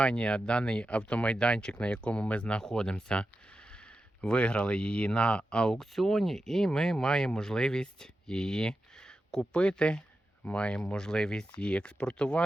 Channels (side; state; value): both; normal; correlation 0.91